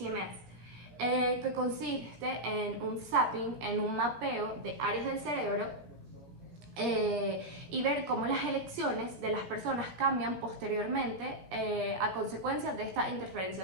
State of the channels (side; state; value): left; late; 17 ms